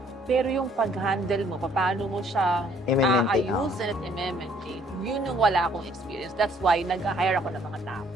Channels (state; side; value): normal; both; correlation 0.62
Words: pero yung pag-handle mo, paano mo siya aayusin at i-maintain, yun yung wala akong experience. That's why nag-hire ako ng mga tao.